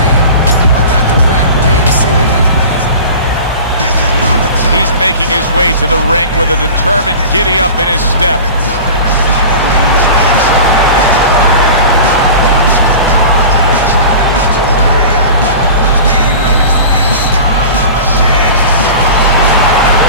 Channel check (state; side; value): inverted; both; correlation -0.36